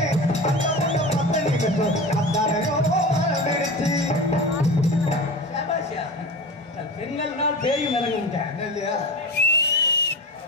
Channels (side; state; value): both; normal; correlation 0.30